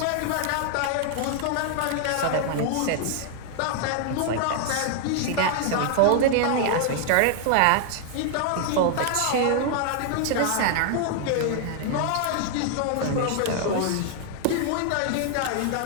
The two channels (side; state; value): both; different; correlation 0.00